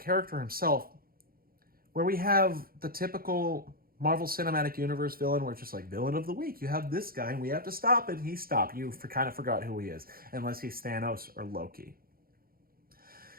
himself, where we have the typical Marvel Cinematic Universe villain, where it's just like, villain of the week, you have this guy and we have to stop it. He stopped. You kind of forgot who he is, unless he's Thanos or Loki.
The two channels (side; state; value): left; late; 0.43 ms